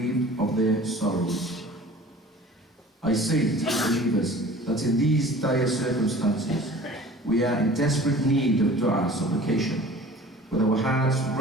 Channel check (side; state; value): both; normal; correlation 0.44